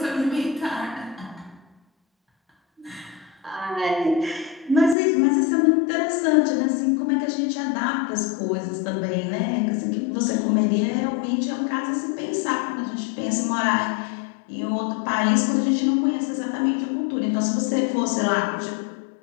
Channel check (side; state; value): right; drops out; at 5.0 s